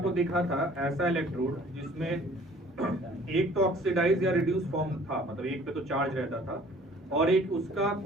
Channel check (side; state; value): both; normal; correlation 0.53